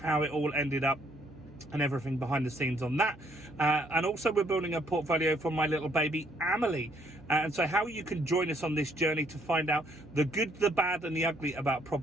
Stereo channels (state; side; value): noise; right; hum, 23 dB below the sound